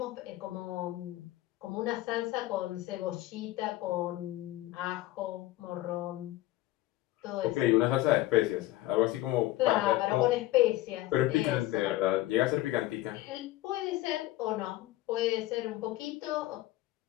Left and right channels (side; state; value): right; quieter; 16.6 dB